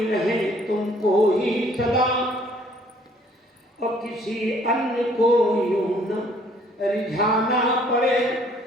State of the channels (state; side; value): normal; both; correlation 0.60